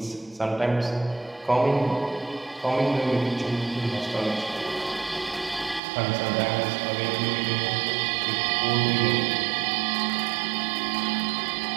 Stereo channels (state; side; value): drops out; left; at 5.8 s